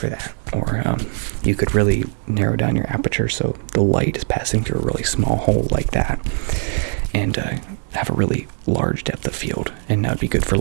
that. Or you could really narrow down your aperture so the light is passing through a really small hole like that, and have a really large depth of field. And that would be good for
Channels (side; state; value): left; silent; digital silence